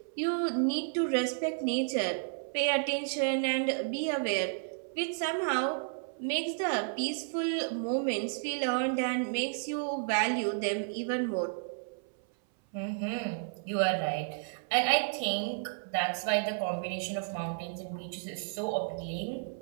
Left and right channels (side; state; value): left; silent; 56 dB below the other